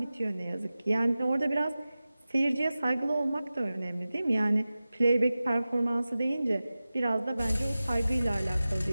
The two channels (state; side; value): inverted; both; correlation -0.96